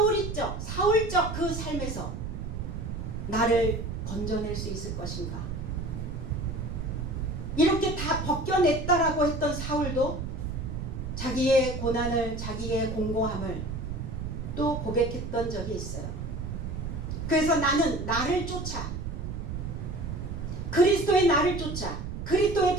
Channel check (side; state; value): right; noise; rumble, 5 dB below the sound